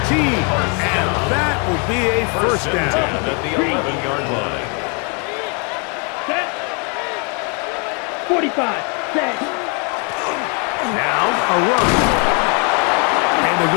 13. And that will be a first down. At the 11-yard line. Set. 45. Set. Now a run. And a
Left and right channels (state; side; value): quieter; right; 35.9 dB